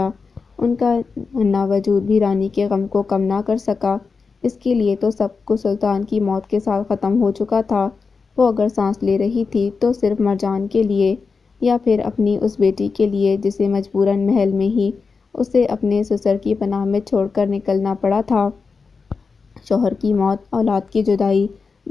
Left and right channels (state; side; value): quieter; right; 4.8 dB